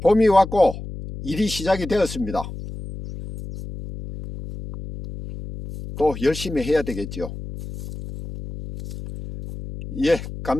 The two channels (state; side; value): noise; left; hum, 10 dB below the sound